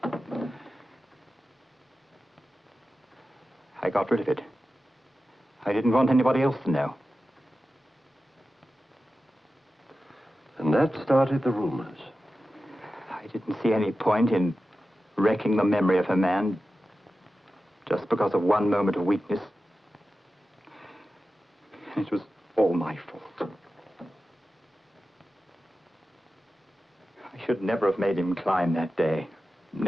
I got rid of it. I didn't want anybody else to know. And that started the rumors. I didn't see any point in wrecking the memory of a man just because of one moment of weakness. It was all my fault. I should never have made him climb that day.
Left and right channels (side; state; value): both; normal; correlation 0.93